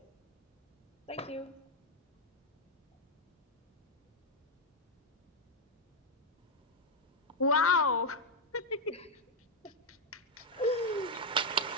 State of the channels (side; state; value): both; normal; correlation 0.02